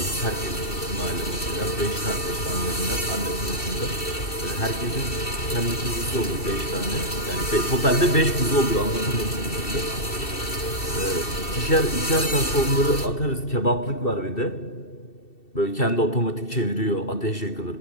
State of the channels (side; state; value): right; late; 2.7 ms